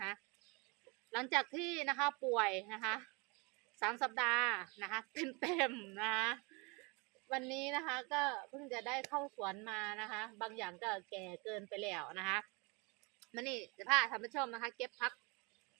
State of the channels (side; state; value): left; quieter; 29.3 dB